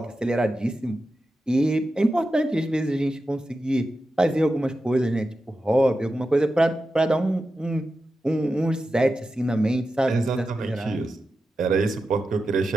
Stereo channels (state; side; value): normal; both; correlation 0.91